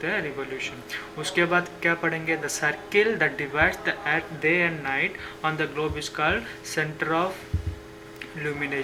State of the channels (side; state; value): both; identical; correlation 1.00